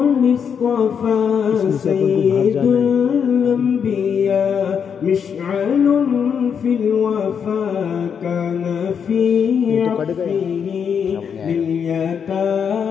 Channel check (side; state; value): right; quieter; 7.2 dB